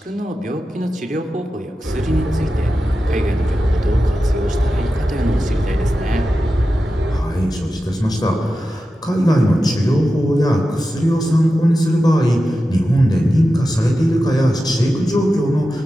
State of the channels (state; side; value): normal; both; correlation 0.92